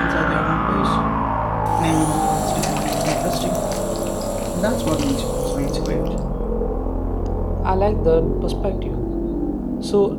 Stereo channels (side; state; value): both; identical; correlation 1.00